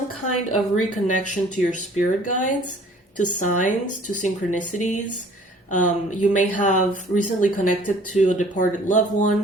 kind of reconnection to your spirit guides, to signs, to synchronicities. You may have recently connected to a departed loved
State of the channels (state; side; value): normal; both; correlation 0.53